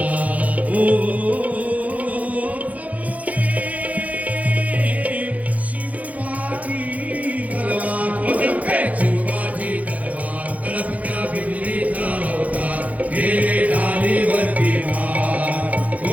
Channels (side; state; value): left; late; 0.071 ms